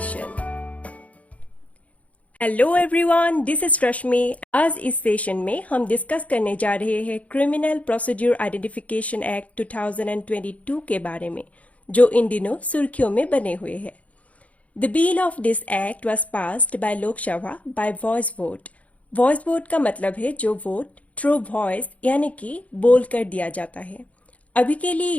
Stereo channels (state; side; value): late; right; 0.067 ms